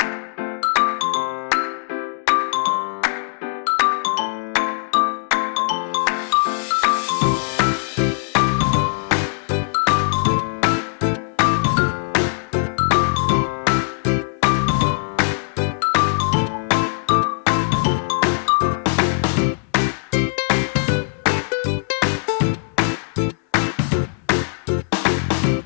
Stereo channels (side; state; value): right; silent; digital silence